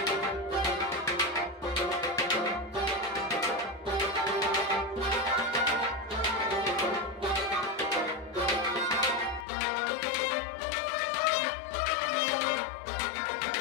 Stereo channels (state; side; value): drops out; right; at 9.5 s